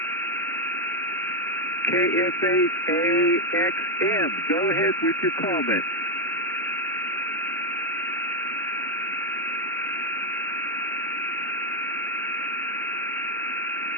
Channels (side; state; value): both; normal; correlation 0.02